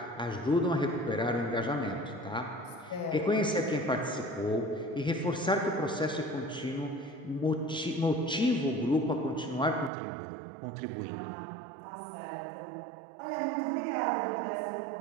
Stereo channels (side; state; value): left; drops out; at 9.9 s